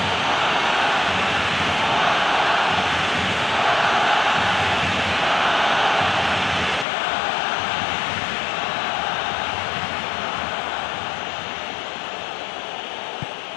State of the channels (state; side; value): drops out; right; at 6.9 s